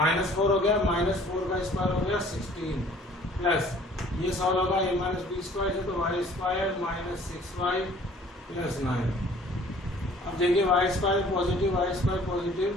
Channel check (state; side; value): normal; both; correlation 0.54